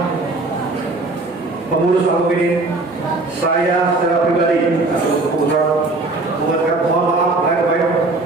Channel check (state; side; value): quieter; left; 3.2 dB